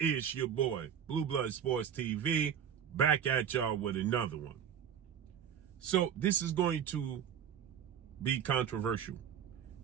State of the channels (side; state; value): left; quieter; 8.7 dB